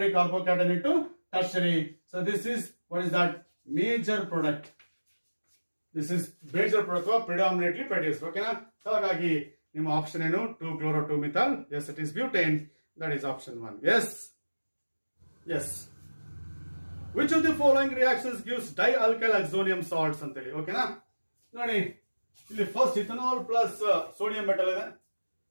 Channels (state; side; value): inverted; both; correlation -1.00